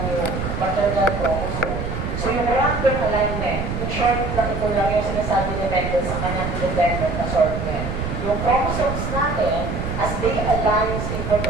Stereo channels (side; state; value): right; noise; rumble, 4 dB below the sound